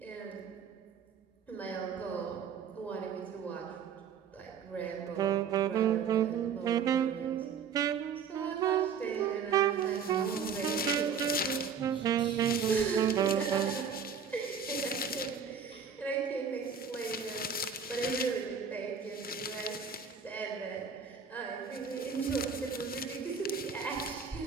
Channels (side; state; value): left; quieter; 6.5 dB